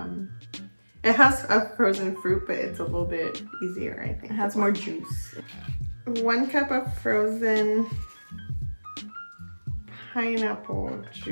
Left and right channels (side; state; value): both; inverted; correlation -1.00